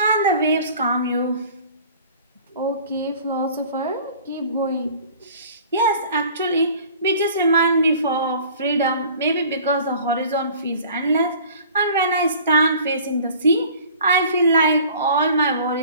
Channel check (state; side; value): inverted; both; correlation -0.47